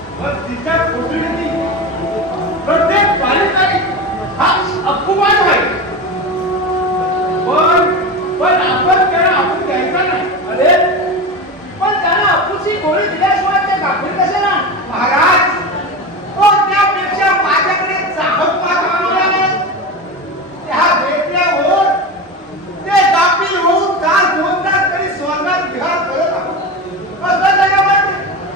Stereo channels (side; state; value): both; normal; correlation 0.24